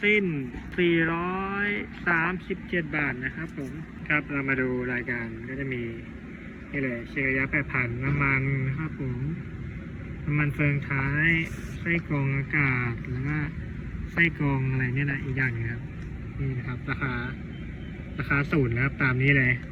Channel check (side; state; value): both; identical; correlation 1.00